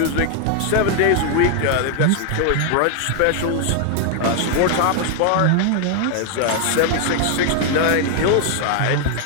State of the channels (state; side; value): different; both; correlation 0.00